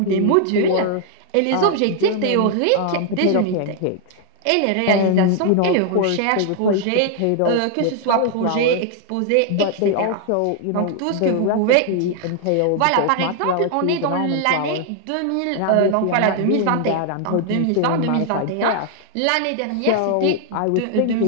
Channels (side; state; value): both; different; correlation 0.00